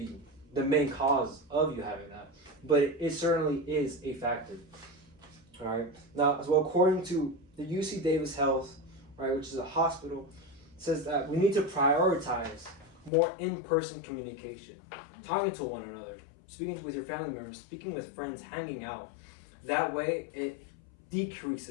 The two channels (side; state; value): right; drops out; at 13.1 s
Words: the main cause of you having that, but it certainly is a factor. All right. Now, as well, according to the UC Davis Health, right, which is a hospital, says that we need to prioritize more in-person communication, talking to one another, speaking with your family members, speaking with friends, hanging out. That way, it